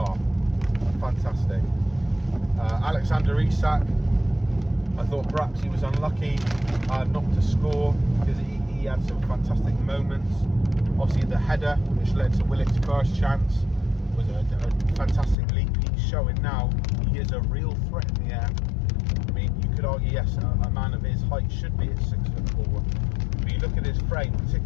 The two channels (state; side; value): drops out; right; at 15.4 s